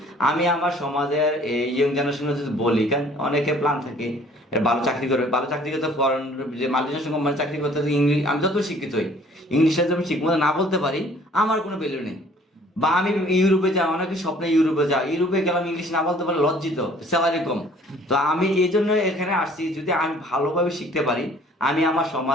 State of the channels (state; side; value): normal; both; correlation 0.55